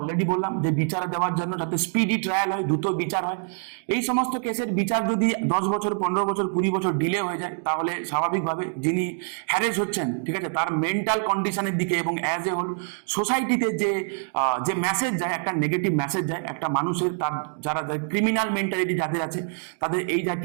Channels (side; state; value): left; silent; 60 dB below the other